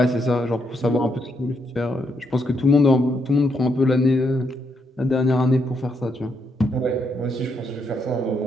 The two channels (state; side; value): normal; both; correlation 0.77